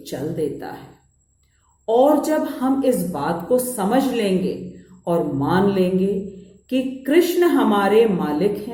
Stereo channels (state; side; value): identical; both; correlation 1.00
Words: चल देता है। और जब हम इस बात को समझ लेंगे और मान लेंगे कि कृष्ण हमारे मालिक